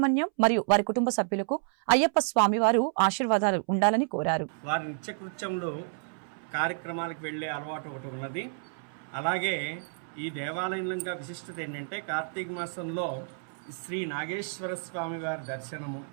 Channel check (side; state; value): left; silent; 58 dB below the other